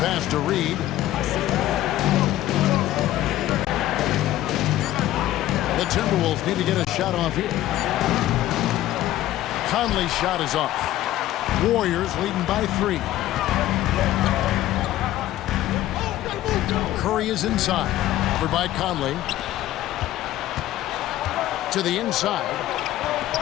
pass to Reed. The Timberwolves need to get a shot off here. Conley's shot is off. Warriors leading by 3. Curry is inside. Covered by Conley. To the inside.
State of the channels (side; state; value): right; quieter; 14.2 dB